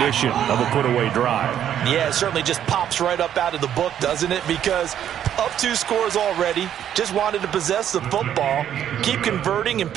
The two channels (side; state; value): left; quieter; 10.1 dB